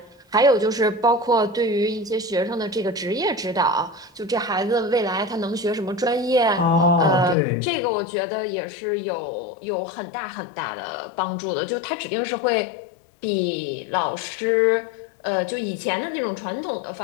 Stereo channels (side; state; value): right; drops out; at 7.4 s